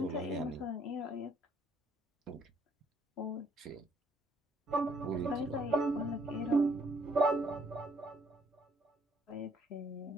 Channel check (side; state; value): both; normal; correlation 0.65